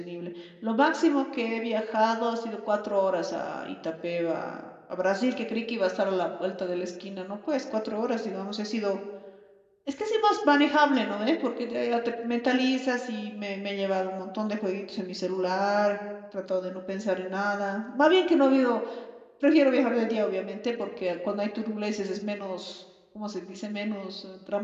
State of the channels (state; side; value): identical; both; correlation 1.00